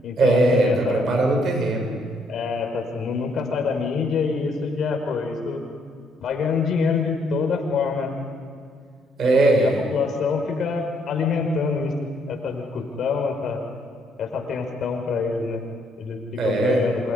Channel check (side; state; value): both; normal; correlation 0.70